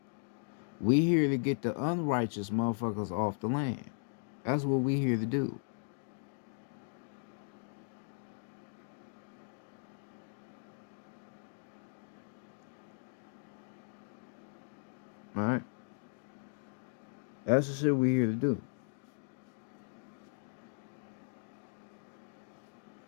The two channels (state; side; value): silent; right; digital silence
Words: We here to get the unrighteous motherfuckers off the land. That's what we here to do. Alright? That's the shit we here to do.